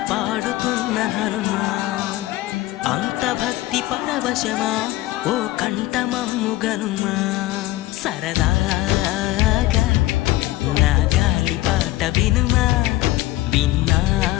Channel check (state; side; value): quieter; right; 17.3 dB